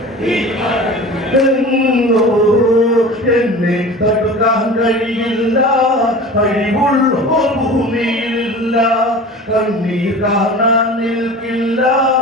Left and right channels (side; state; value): both; normal; correlation 0.37